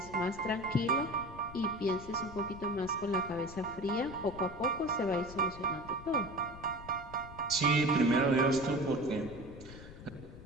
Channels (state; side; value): noise; left; rumble, 15 dB below the sound